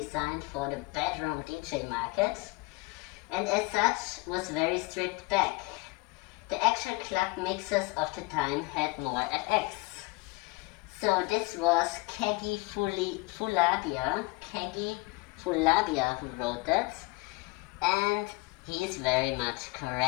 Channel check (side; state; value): right; quieter; 25.6 dB